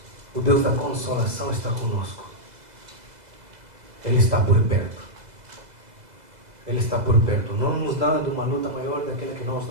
o Deus da consolação, está conosco. Ele está por perto. Ele está por perto, não nos dando uma luta maior daquela que nós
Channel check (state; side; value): late; left; 2.0 ms